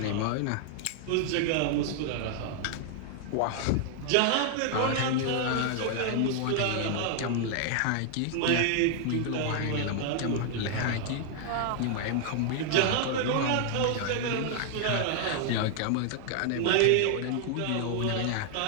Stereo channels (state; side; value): different; both; correlation 0.00